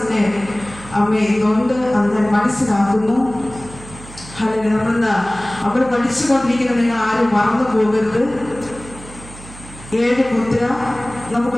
അമ്മേ ഇതുകൊണ്ട് അത് ഞാൻ മനസ്സിലാക്കുന്നു. അല്ലെങ്കിൽ നമ്മളിന്ന് അവിടെ പഠിച്ചുകൊണ്ടിരിക്കുന്നത് നിങ്ങൾ ആരും മറന്നു പോകരുത്. 7 മുദ്ര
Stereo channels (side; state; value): right; noise; hum, 17 dB below the sound